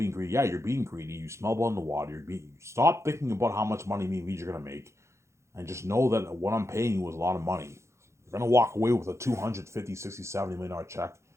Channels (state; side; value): late; left; 0.14 ms